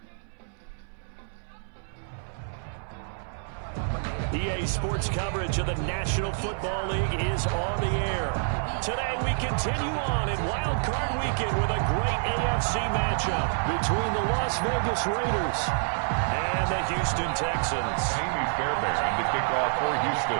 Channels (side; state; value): left; silent; 60 dB below the other